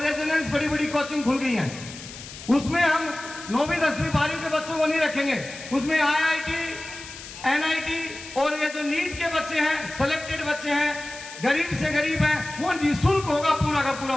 रेजिडेंस बड़ी बड़ी कोचिंग खुल गई हैं। उसमें हम 9वीं 10वीं 12वीं के बच्चों को नहीं रखेंगे, उसमें IIT NIT और ये जो नीट के बच्चे हैं, सिलेक्टेड बच्चे हैं, गरीब से गरीब हैं, वो निःशुल्क होगा पूरा का पूरा।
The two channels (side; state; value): left; noise; hiss, 14 dB below the sound